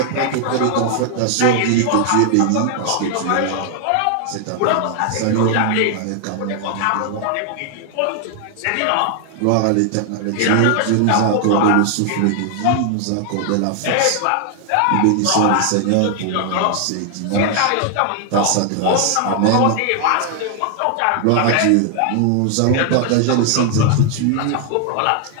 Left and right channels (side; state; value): both; different; correlation 0.00